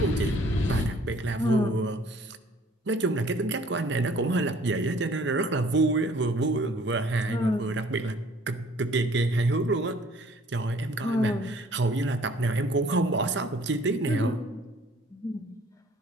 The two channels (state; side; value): normal; both; correlation 0.56